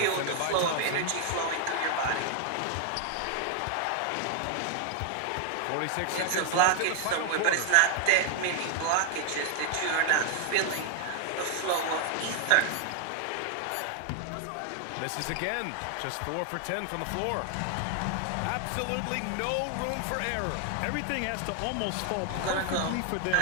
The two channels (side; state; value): both; different; correlation 0.00